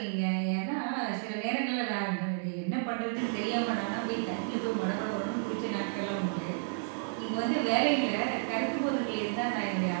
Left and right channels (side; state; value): left; silent; digital silence